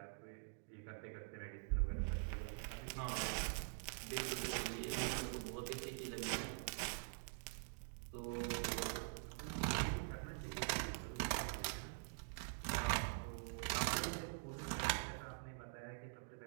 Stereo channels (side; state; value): left; silent; digital silence